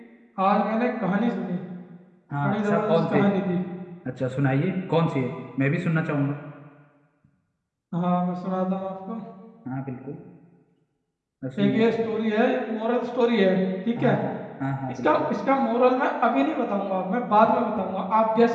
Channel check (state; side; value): identical; both; correlation 1.00